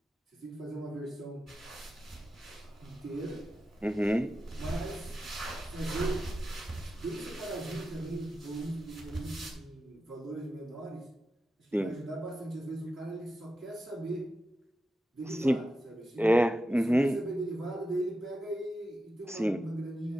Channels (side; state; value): both; normal; correlation 0.90